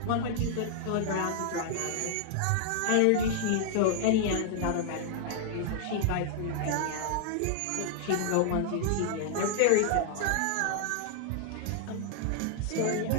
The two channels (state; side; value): different; both; correlation -0.01